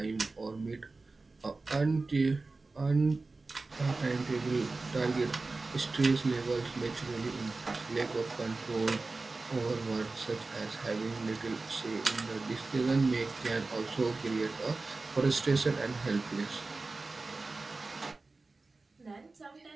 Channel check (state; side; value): quieter; left; 3.6 dB